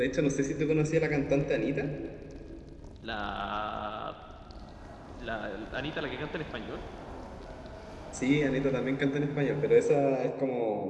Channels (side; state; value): both; identical; correlation 1.00